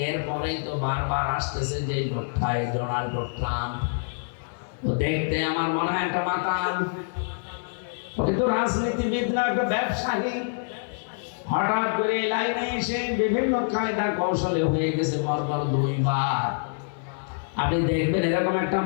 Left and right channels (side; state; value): right; silent; 61 dB below the other